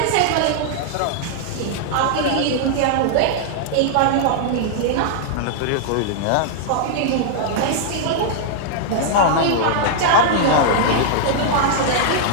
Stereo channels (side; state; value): both; different; correlation -0.01